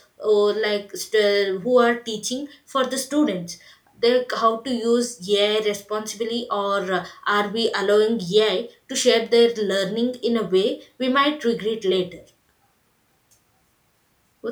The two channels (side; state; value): both; identical; correlation 1.00